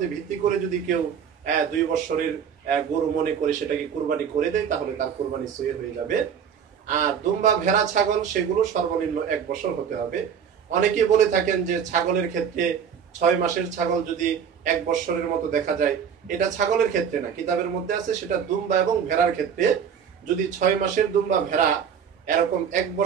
ভিত্তি করে যদি কেউ 2 বছরের গরু মনে করে সেটাকে কুরবানি করে দেয়, তাহলে তার কুরবানি সহি হয়ে যাবে। আর দুম্বা, ভেড়া, ছাগল, সেগুলো সর্বনিম্ন 1 বছর হতে হবে। অনেকে বলে থাকেন যে ছাগলের ক্ষেত্রে 6 মাসের ছাগল যদি 1 বছরের মতো দেখা যায়, এটা ছাগলের ক্ষেত্রে না, কিতাবের মধ্যে আছে সেটা দুম্বা এবং ভেড়ার ক্ষেত্রে। যদি 6 মাসের দুম্বা ভেড়া এরকম 1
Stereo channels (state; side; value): quieter; left; 7.7 dB